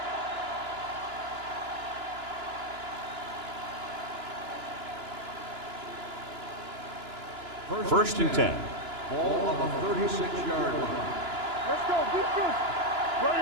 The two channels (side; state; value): left; late; 2.9 ms